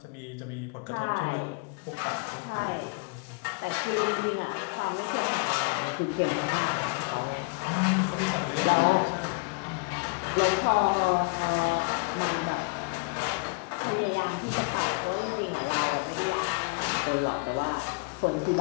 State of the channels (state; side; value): quieter; right; 31.7 dB